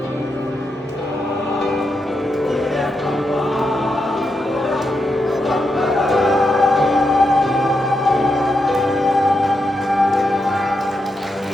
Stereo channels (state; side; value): normal; both; correlation 0.84